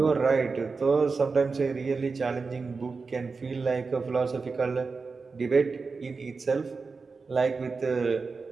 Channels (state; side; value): quieter; left; 4.5 dB